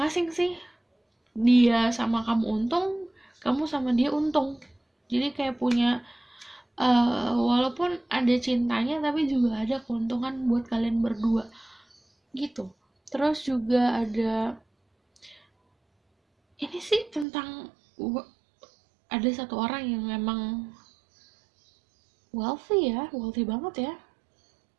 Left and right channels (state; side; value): drops out; left; at 17.2 s